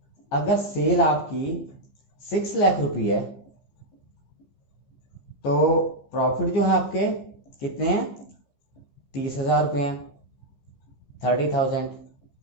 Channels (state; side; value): late; right; 15 ms